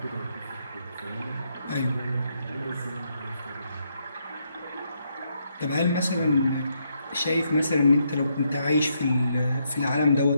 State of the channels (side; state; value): both; inverted; correlation -0.77